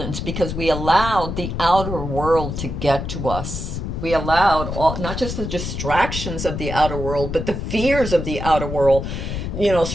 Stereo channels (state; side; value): noise; left; rumble, 5 dB below the sound